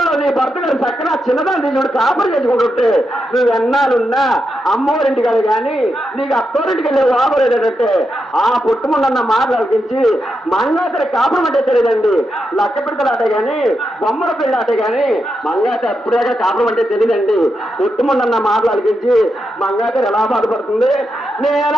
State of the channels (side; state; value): both; normal; correlation 0.85